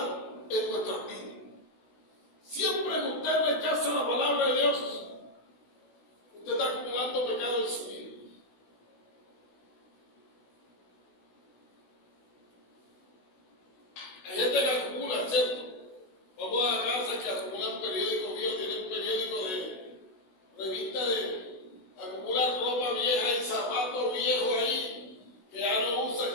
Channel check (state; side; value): late; right; 16 ms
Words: en nuestras vidas. Siempre que usted rechaza la palabra de Dios, usted está acumulando pecado en su vida. Hay gente que acumula, ¿cierto? Vamos a la casa que acumulan periódicos viejos, tienen periódicos de revista acumulan ropa vieja y zapatos viejos ahí que ya no usan,